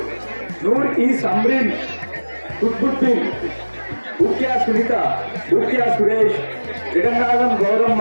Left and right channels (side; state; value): both; inverted; correlation -1.00